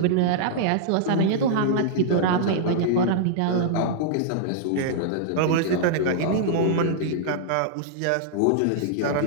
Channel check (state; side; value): different; both; correlation -0.02